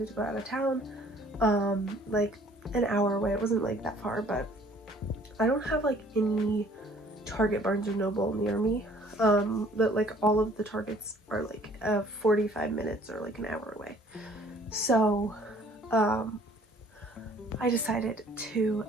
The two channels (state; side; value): normal; both; correlation 0.57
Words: to go out of town, like an hour away. It wasn't like that far, but I don't have like any Target, Barnes & Noble near me. But like all of the Targets are like 45 minutes or like an hour away. So I decided to